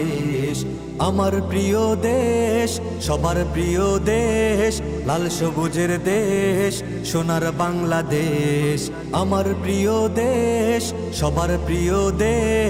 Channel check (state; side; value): identical; both; correlation 1.00